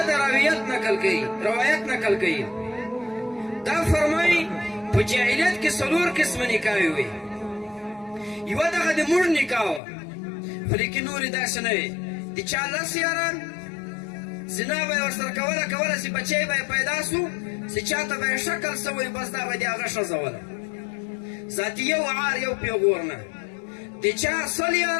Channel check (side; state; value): right; drops out; at 9.8 s